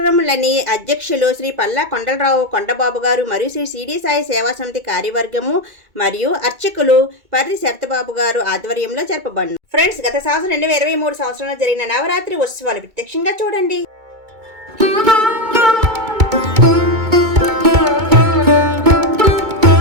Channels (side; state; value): left; late; 2.2 ms